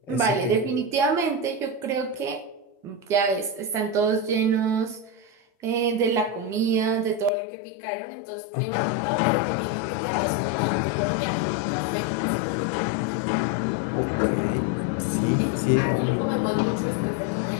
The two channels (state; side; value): drops out; right; at 7.3 s